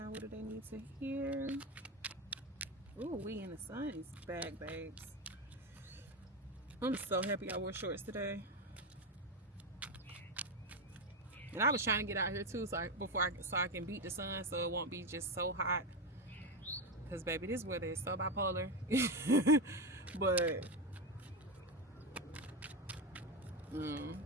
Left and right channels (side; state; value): both; normal; correlation 0.13